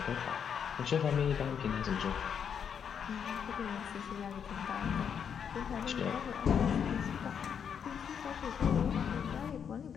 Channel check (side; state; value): right; quieter; 7.5 dB